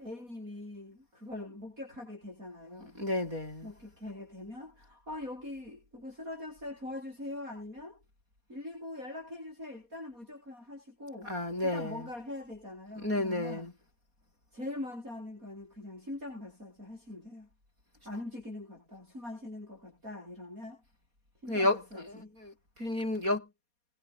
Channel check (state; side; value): late; left; 4.2 ms